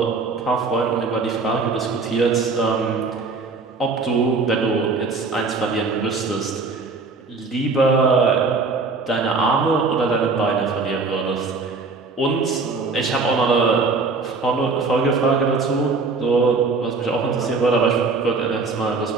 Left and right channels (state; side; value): quieter; left; 4.1 dB